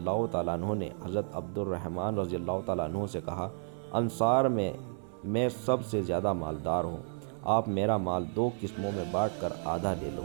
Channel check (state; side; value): silent; left; 57 dB below the other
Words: تعالیٰ عنہ نے حضرت عبد الرحمن رضی اللہ تعالیٰ عنہ سے کہا، انصار میں سب سے زیادہ مالدار ہوں، آپ میرا مال 2 قسموں میں بانٹ کر آدھا لے لو،